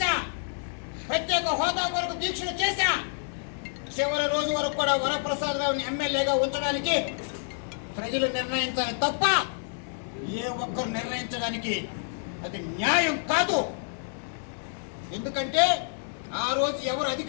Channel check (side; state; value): right; silent; digital silence